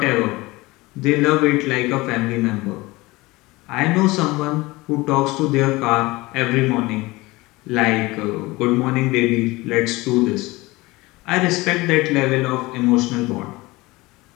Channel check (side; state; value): right; quieter; 21.4 dB